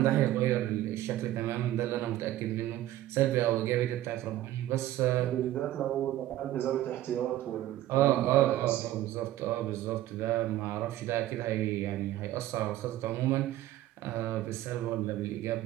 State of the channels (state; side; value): quieter; left; 14.2 dB